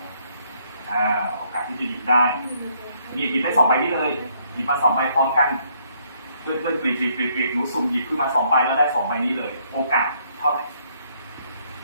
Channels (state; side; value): inverted; both; correlation -0.69